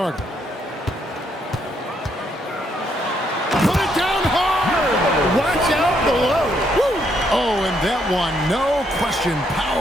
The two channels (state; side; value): normal; both; correlation 0.74